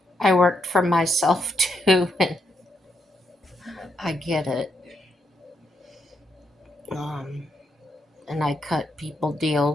I worked for myself too, and I get it. Um, and I cut people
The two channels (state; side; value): normal; both; correlation 0.78